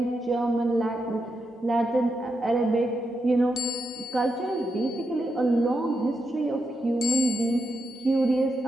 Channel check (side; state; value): both; normal; correlation 0.85